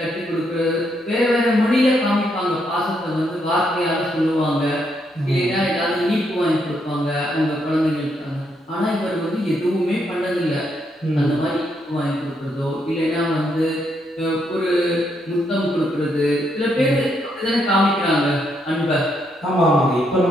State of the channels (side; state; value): both; normal; correlation 0.77